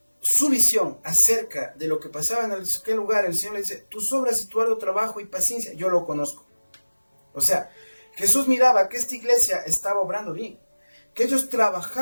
su visión acerca de lo que pasaba en aquel lugar, el Señor le dice, tus obras y tu arduo trabajo y paciencia, yo lo conozco. O sea, Jesús miraba que esta iglesia estaba obrando bien, que ellos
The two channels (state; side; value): inverted; both; correlation -1.00